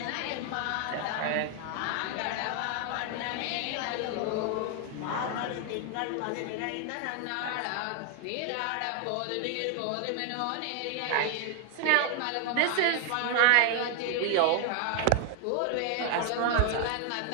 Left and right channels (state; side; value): different; both; correlation 0.00